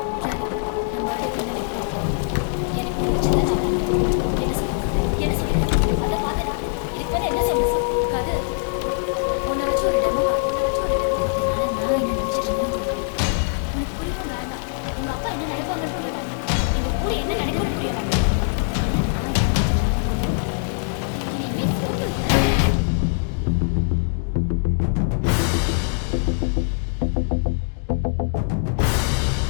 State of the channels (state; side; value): silent; right; 63 dB below the other